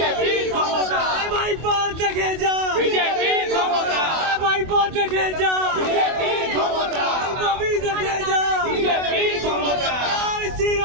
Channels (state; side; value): late; left; 24 ms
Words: ক্ষমতা, ভাইপো দেখে যা বিজেপি ক্ষমতা, ভাইপো দেখে যা বিজেপি ক্ষমতা, ববি দেখে যা বিজেপি ক্ষমতা, জয়